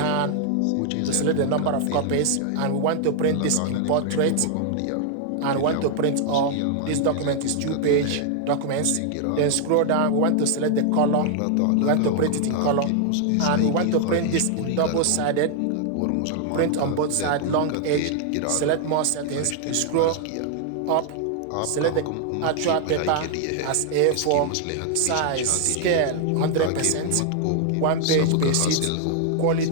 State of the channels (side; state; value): both; different; correlation 0.00